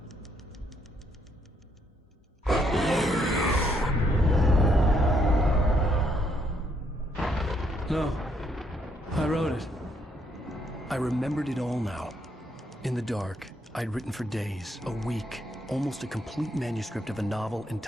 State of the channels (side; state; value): both; normal; correlation 0.72